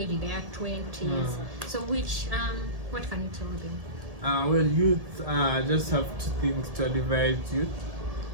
they are 20s. So which what can you tell them? Well, youth just have two things to advise youth.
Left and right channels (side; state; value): left; late; 1.7 ms